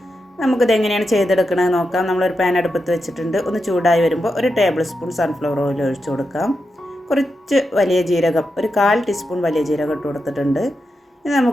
നമുക്കിത് എങ്ങനെയാണ് ചെയ്തെടുക്കണമെന്ന് നോക്കാം. നമ്മളൊരു പാൻ അടുപ്പത്ത് വെച്ചിട്ടുണ്ട്. ഒന്ന് ചൂടായി വരുമ്പോൾ ഒരു ടേബിൾ സ്പൂൺ സൺഫ്ലവർ ഓയിൽ ഒഴിച്ചു കൊടുക്കാം. കുറച്ച് വലിയ ജീരകം, ഒരു 1/4 ടീസ്പൂൺ വലിയ ജീരകം ഇട്ട് കൊടുത്തിട്ടുണ്ട്. ഇനി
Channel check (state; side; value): normal; both; correlation 0.87